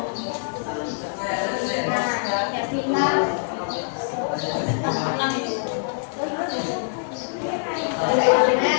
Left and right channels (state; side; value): silent; right; digital silence